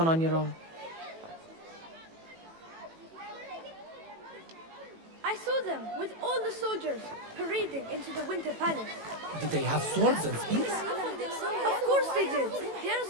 on your own. I saw them with all the soldiers parading into the Winter Palace. Did they have swords and spears? Of course they did. They are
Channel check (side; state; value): left; late; 18 ms